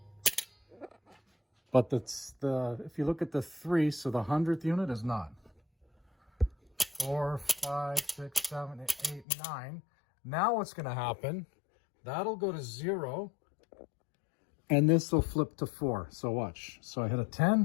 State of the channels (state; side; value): drops out; right; at 9.2 s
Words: But if you look at the 3, so the 100th unit is not. 4, 5, 6, 7, 8, 9. Now what's going to happen, that'll go to 0, and this will flip to 4. So watch. So I hit a